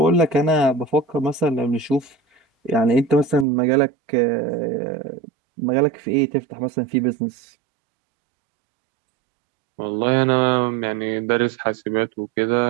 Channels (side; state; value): left; drops out; at 3.5 s